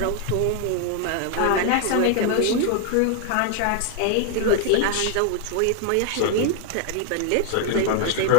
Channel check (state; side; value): different; both; correlation 0.01